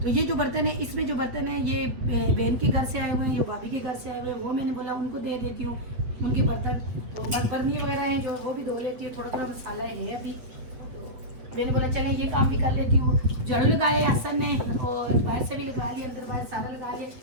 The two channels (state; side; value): late; left; 8.3 ms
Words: तो ये जो बर्तन है, इसमें जो बर्तन है ये बहन के घर से आए हुए हैं, ये भाभी के घर से आए हुए हैं, वो मैंने बोला उनको दे देती हूँ उनके बर्तन। तो बर्तनी वगैरह हैं जो, वो भी धो लेती हूँ। थोड़ा थोड़ा मसाला है अभी, मैंने बोला चले ये काम भी कर लेती हूँ। झाड़ू लगाए हसन ने, और बाहर से भी लगा लिया, अंदर बाहर सारा लगा लिया।